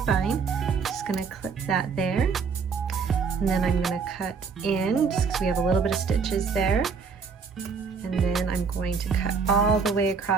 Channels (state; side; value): quieter; left; 5.5 dB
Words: fine. Just gonna clip that there. And then I'm gonna cut in, just because we have a little bit of stitches there. And then I'm going to cut all the way